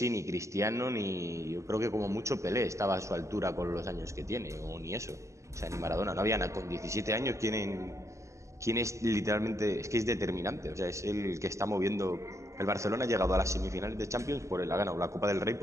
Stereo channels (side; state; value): left; late; 0.14 ms